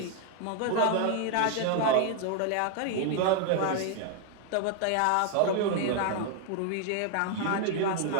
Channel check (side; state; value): both; different; correlation 0.00